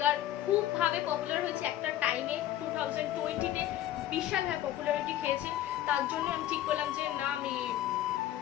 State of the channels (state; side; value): quieter; right; 13.0 dB